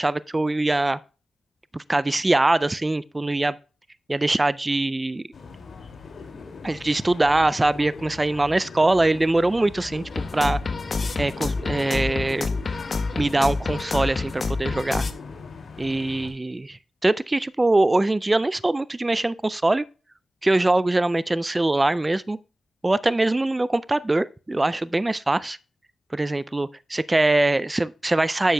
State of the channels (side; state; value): both; normal; correlation 0.98